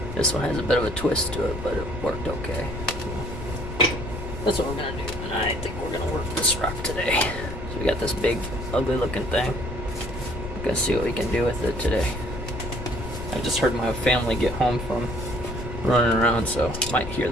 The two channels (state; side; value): noise; left; rumble, 9 dB below the sound